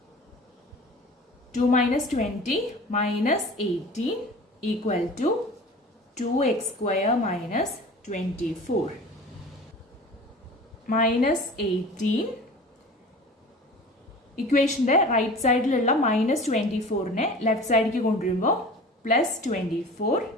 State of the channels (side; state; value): both; normal; correlation 0.40